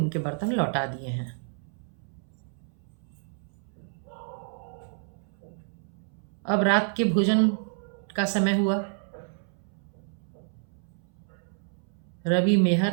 बर्तन लौटा दिए हैं। अब रात के भोजन का समय हुआ। रवि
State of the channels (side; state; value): left; silent; 58 dB below the other